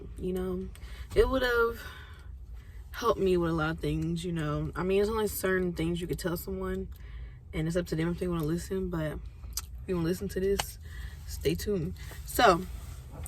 It would have helped me with a lot of things. I mean, there's only certain things you could tell someone, and it's up to them if they want to listen. But if you want to listen to this, stay tuned. So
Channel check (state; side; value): identical; both; correlation 1.00